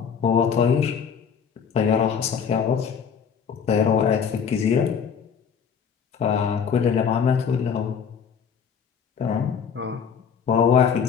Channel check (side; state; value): right; quieter; 6.9 dB